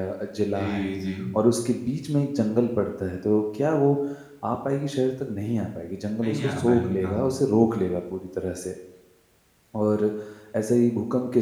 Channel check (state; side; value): identical; both; correlation 1.00